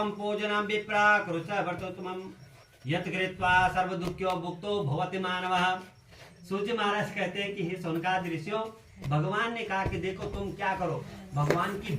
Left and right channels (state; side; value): identical; both; correlation 1.00